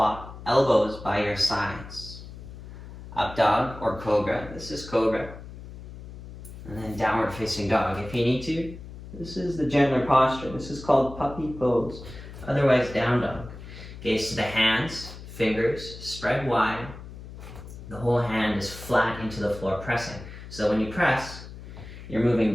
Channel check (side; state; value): left; noise; hum, 14 dB below the sound